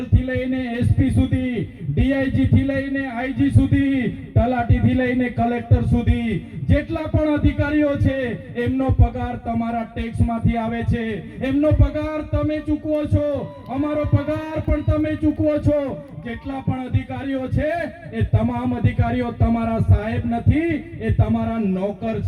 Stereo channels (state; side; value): identical; both; correlation 1.00